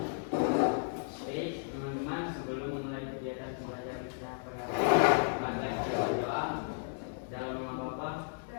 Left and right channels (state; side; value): silent; right; digital silence